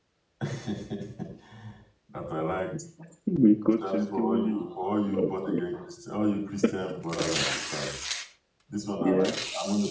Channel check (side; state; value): both; identical; correlation 1.00